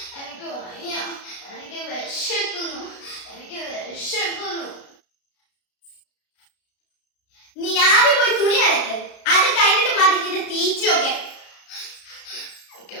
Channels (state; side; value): late; right; 33 ms